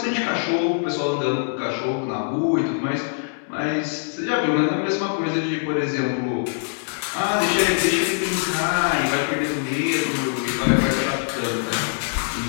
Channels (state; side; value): silent; right; 63 dB below the other